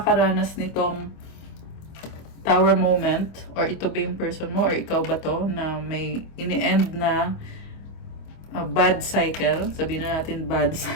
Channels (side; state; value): right; late; 25 ms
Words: nitong tower moment, or ito ba yung person mo, or ikaw ba to, na may ini-end na bad cycle, sabihin na natin bad